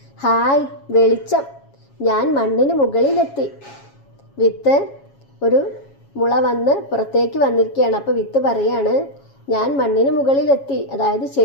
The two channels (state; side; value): late; right; 7.3 ms